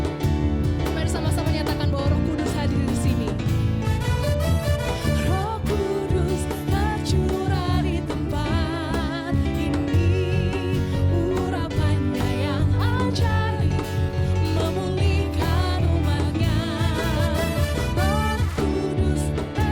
Mari sama-sama nyatakan bahwa Roh Kudus hadir di sini. Roh Kudus tercurah di tempat ini. Urapannya yang ajaib memulihkan umatnya. Roh Kudus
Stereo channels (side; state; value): both; identical; correlation 1.00